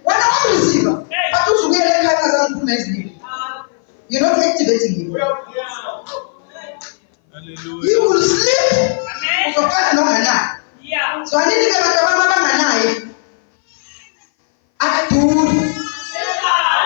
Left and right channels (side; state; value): right; silent; 60 dB below the other